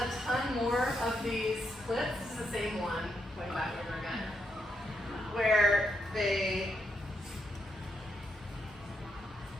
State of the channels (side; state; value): both; normal; correlation 0.80